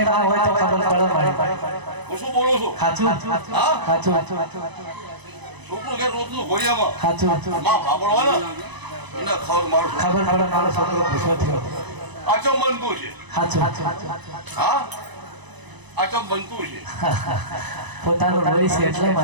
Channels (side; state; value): left; late; 1.0 ms